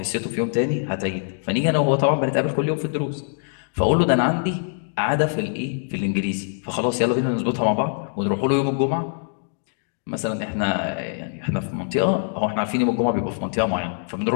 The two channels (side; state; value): right; silent; digital silence